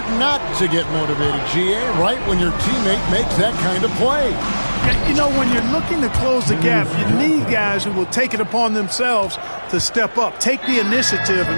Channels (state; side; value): inverted; both; correlation -1.00